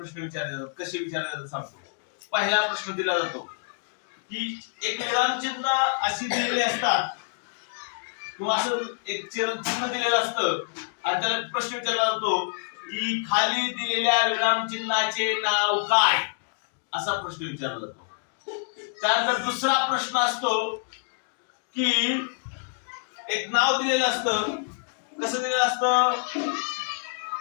विचारले जातात. कसे विचारले जातात सांगतो. पहिला प्रश्न दिला जातो की एक विरामचिन्ह अशी दिलेली असतात किंवा असं एक चिन्ह दिलेलं असतं आणि त्याला प्रश्न विचारला जातो की खाली दिलेल्या विरामचिन्हाचे नाव काय, असा प्रश्न विचारला जातो. त्यानंतर दुसरा प्रश्न असतो की एक नाव दिलेलं असतं. कसं दिलेलं असतं?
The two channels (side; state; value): right; silent; digital silence